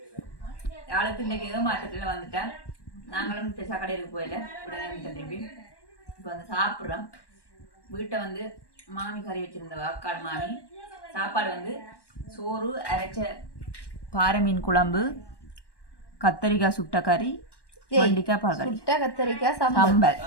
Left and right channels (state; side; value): late; right; 1.1 ms